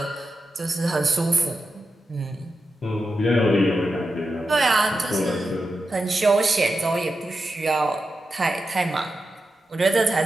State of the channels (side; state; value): both; normal; correlation 0.89